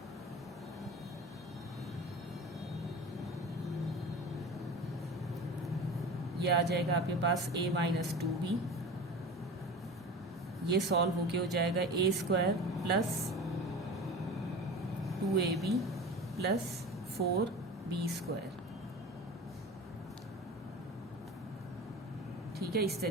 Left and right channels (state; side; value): normal; both; correlation 0.34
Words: ये आ जाएगा आपके पास a माइनस 2b। ये सॉल्व होके हो जाएगा a square plus 2ab plus 4b square. ठीक है, इस